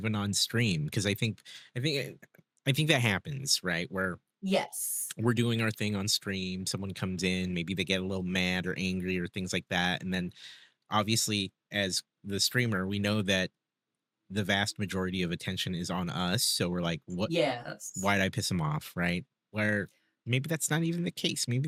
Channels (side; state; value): both; identical; correlation 1.00